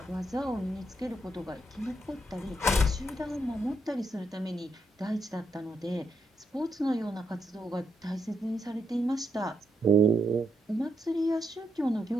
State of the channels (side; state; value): both; normal; correlation 0.79